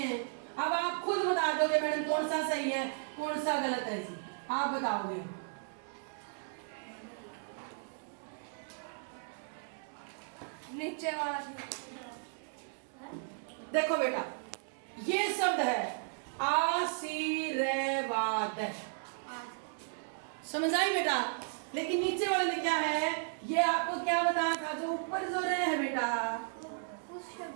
अब आप खुद बता दोगे मैडम कौन सा सही है कौन सा गलत है जी, आप बताओगे। नीचे वाला। देखो बेटा ये शब्द है आशीर्वाद, समझ आई बेटा। लेकिन नीचे वाले में क्या है, ये आपको क्या बताया था, जो ऊपर जो रे है बेटा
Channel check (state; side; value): silent; left; digital silence